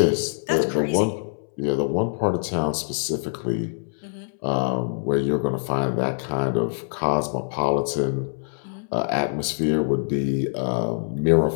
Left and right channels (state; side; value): silent; right; 62 dB below the other